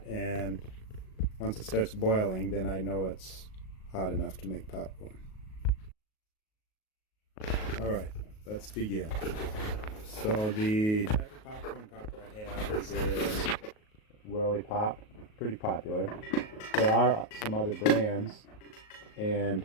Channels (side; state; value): right; late; 38 ms